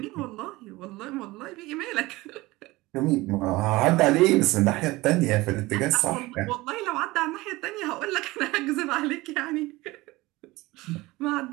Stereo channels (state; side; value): quieter; left; 20.3 dB